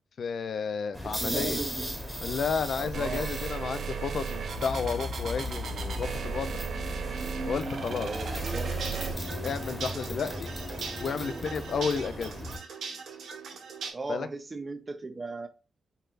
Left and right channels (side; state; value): both; normal; correlation 0.79